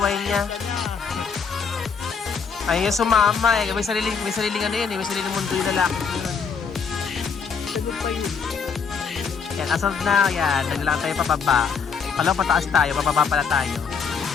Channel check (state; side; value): quieter; right; 6.0 dB